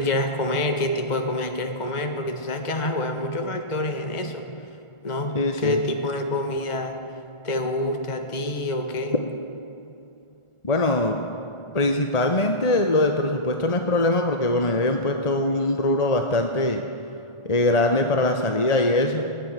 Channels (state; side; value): late; right; 1.4 ms